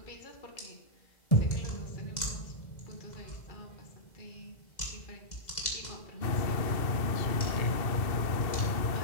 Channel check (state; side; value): late; right; 2.0 ms